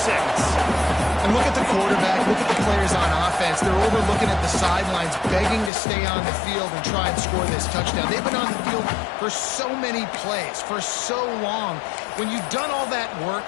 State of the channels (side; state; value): right; drops out; at 5.7 s